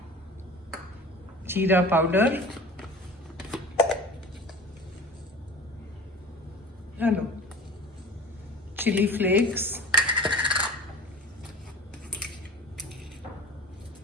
जीरा पाउडर डालो. Chili flakes,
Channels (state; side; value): normal; both; correlation 0.39